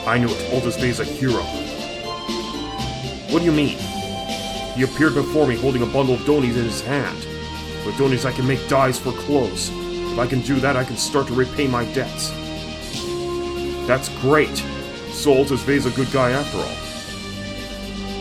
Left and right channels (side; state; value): both; identical; correlation 1.00